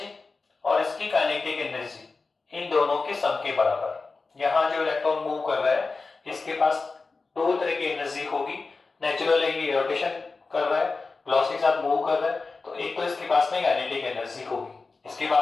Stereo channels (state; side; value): quieter; right; 4.0 dB